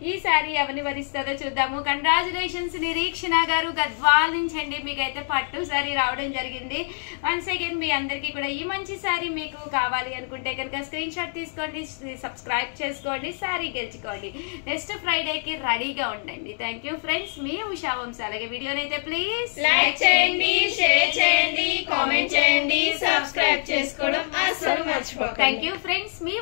ఈ శారీ ఎవరిని వరిస్తుందో చూద్దాము. కంగ్రాచులేషన్స్ నిరీక్షణ గారు గద్వాల్ నుంచి అండి, మీకైతే పట్టు శారీ రావడం జరిగింది. వన్స్ అగైన్ మీ అందరికీ కూడా ఈ మంచి శారీ మీకు కావాలి అనుకుంటే కనుక స్క్రీన్ షాట్ తీసుకోండి, సబ్స్క్రైబ్ చేసుకోండి, శారీ గెలుచుకోండి. నెక్స్ట్ ఫ్రైడేకి రెడీగా ఉండండి. థ్యాంక్ యూ ఫ్రెండ్స్, మీ ఉషా వంశీ. అలాగే వీడియోనైతే ప్లీజ్ లైక్ చేయండి, షేర్ చేయండి, కామెంట్ చేయండి, సబ్స్క్రైబ్ చేసుకోవడం అస్సలు మర్చిపోకండి. థ్యాంక్ యూ ఫ్రెండ్స్, మీ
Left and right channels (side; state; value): right; silent; digital silence